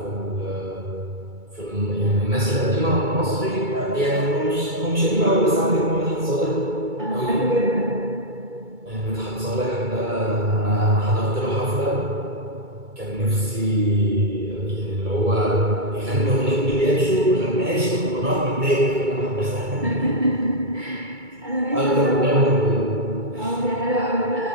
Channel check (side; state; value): left; late; 2.3 ms